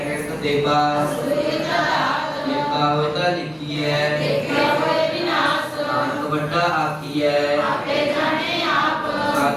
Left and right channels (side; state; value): both; identical; correlation 1.00